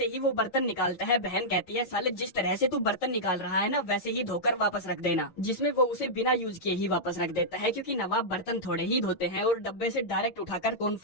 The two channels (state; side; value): late; right; 8.9 ms